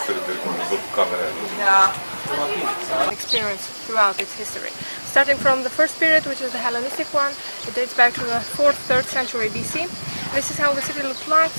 să râde cu camera. Experience throughout its history. Starting from the first period, which is the Hellenistic one, it dates back to the 4th, 3rd century BC. This is how the city looked like.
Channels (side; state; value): both; inverted; correlation -1.00